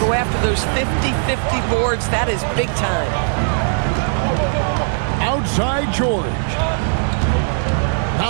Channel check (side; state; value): left; silent; 60 dB below the other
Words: go after those 50-50 boards, that is big time. Outside George.